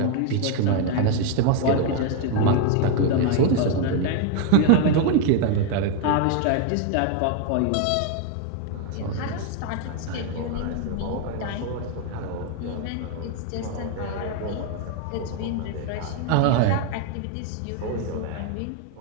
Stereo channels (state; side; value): different; both; correlation 0.01